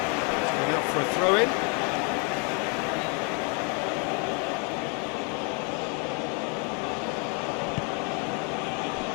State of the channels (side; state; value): right; quieter; 35.7 dB